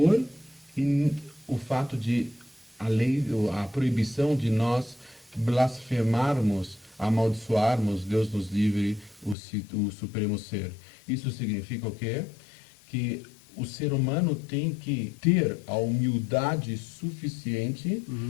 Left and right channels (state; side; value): drops out; right; at 9.3 s